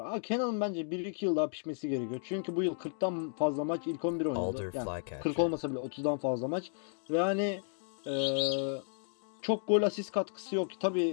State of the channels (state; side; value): silent; right; digital silence